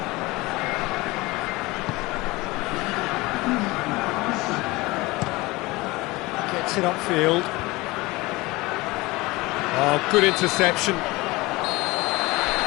Gets it upfield. Oh, good interception.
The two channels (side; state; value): right; quieter; 21.8 dB